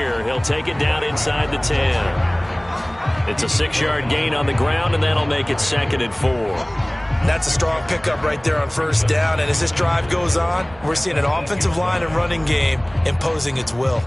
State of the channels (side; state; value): right; noise; rumble, 23 dB below the sound